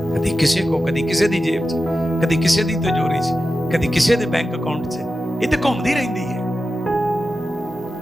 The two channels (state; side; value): normal; both; correlation 0.92